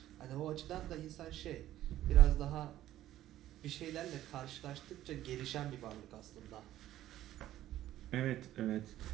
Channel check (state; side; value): quieter; left; 13.5 dB